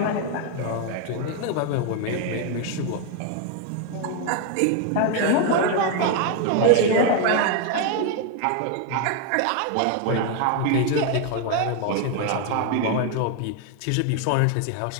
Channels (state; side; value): different; both; correlation 0.01